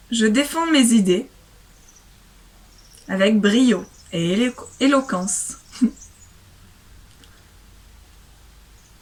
je défends mes idées avec brio et éloquence.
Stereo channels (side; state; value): both; identical; correlation 1.00